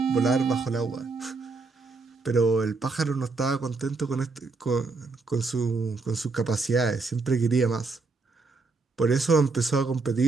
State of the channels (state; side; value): quieter; left; 4.0 dB